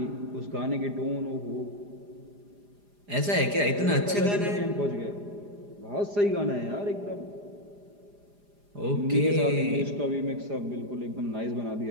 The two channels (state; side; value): late; left; 4.9 ms